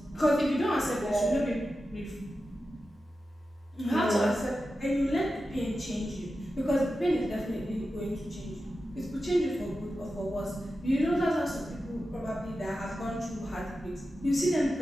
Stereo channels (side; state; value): both; normal; correlation 0.92